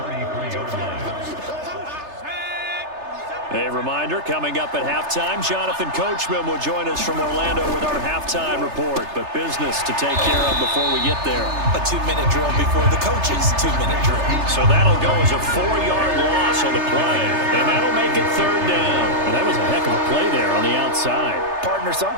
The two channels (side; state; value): left; late; 3.3 ms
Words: A reminder, coming up at halftime, Jonathan Coachman will join us from Orlando with our halftime report. But business to take care of before we get there. A 2-minute drill before the coach's 2-minute drill. So that'll go as a 4-yard loss on the play. And that'll make it 3rd down. And that was a heck of a play there on the outside. Partner,